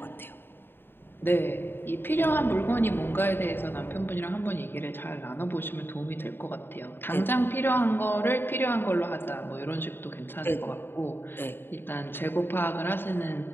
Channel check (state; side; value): late; right; 0.10 ms